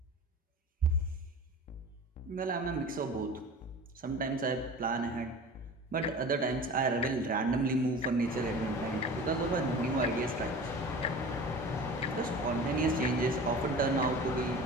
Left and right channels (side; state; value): both; normal; correlation 0.37